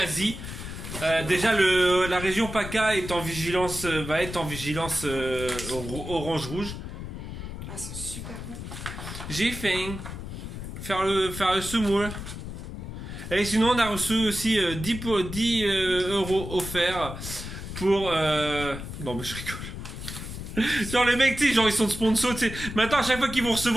Déjà, la région PACA est en vigilance, va être en vigilance orange-rouge. Ah, c'est super bon. J'ai faim. Faire le semoule. Et sinon, on a reçu aussi 10 euros offerts pour... Non, mais je rigole. Genre, les mecs, tu sais, genre, ils sont sponsors, tu sais. Maintenant, à chaque fois qu'ils vont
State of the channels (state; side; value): noise; left; rumble, 8 dB below the sound